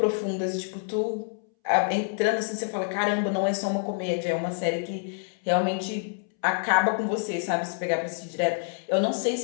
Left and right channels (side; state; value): right; silent; 60 dB below the other